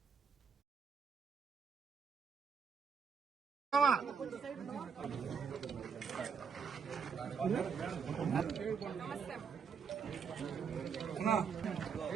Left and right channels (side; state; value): left; quieter; 6.3 dB